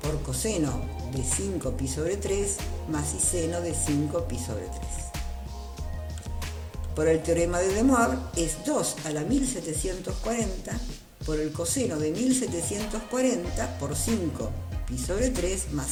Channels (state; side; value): identical; both; correlation 1.00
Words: por coseno de 5pi sobre 3 más y seno de 5pi sobre 3. Por el teorema de De Moivre es 2 a la 1740 por el coseno de 1740 por 5pi sobre 3